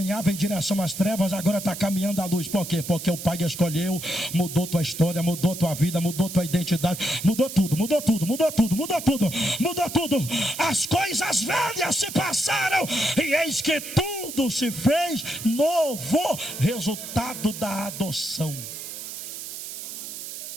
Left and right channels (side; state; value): right; noise; hiss, 9 dB below the sound